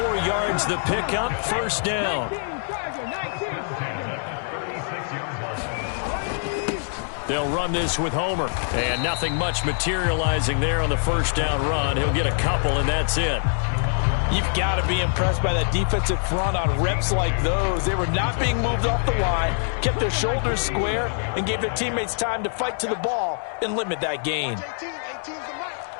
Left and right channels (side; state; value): right; silent; digital silence